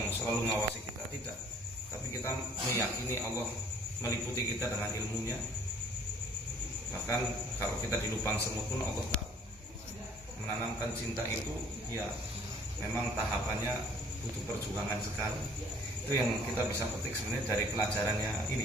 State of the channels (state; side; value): normal; both; correlation 0.56